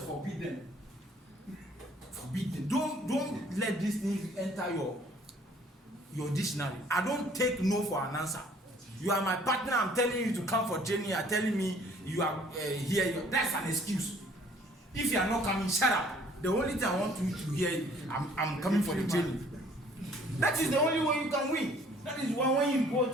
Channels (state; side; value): normal; both; correlation 0.57